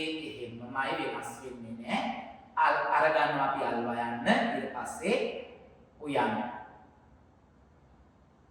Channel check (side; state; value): both; identical; correlation 1.00